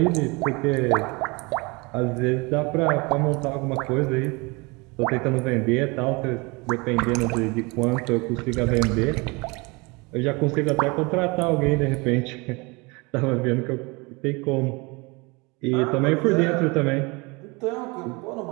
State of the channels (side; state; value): left; quieter; 27.0 dB